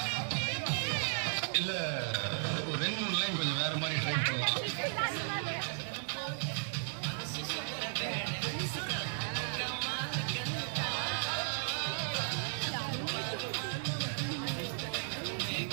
இல்லை ஒரு 2-3 லைன் கொஞ்சம் வேறு மாதிரி ட்ரை பண்ணலாம்.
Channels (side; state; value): left; silent; digital silence